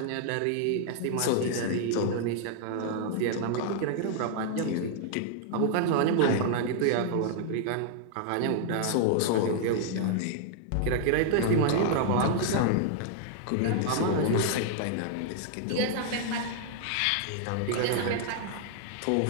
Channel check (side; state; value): both; different; correlation -0.01